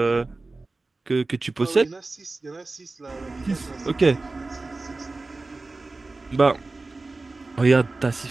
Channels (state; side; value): quieter; left; 3.4 dB